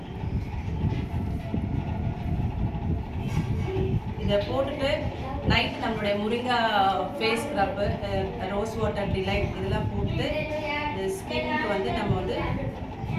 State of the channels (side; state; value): both; identical; correlation 1.00